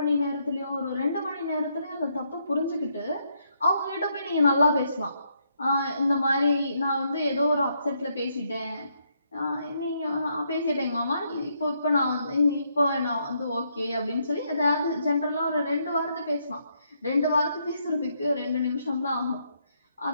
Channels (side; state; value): both; inverted; correlation -0.76